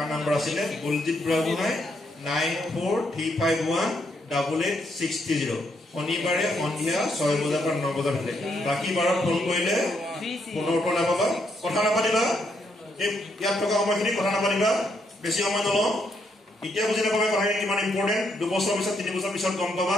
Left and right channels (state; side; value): normal; both; correlation 0.76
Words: নম্বৰ আছিলে বলজিৎ বুঢ়াগোহাঁই 9435188630 শনিবাৰে সন্ধিয়া 6 বজাৰ পৰা 9 বজাৰ ভিতৰত বাকী বাৰত ফোন কৰিলে ফোনৰ উত্তৰ নাপাবা কথা নাপাতিবা এই ইয়াত থকা সময়খিনি কথা নাপাতিবা বেছি সময় নলওঁ এতিয়া বুজি নাপাবা কথাখিনি কিমান ইম্পৰ্টেণ্ট 2 বছৰ পিছত 3 বছৰ পিছত গম পাবা